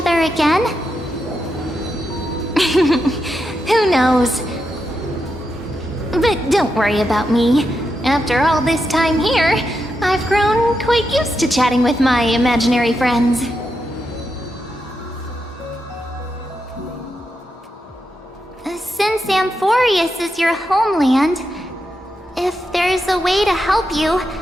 again? Who knows? But don't worry about me. After all this time here, I've grown quite used to chatting with my imaginary friends. Since Amphorius is your homeland, if there's a way to help you,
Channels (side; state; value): both; normal; correlation 0.85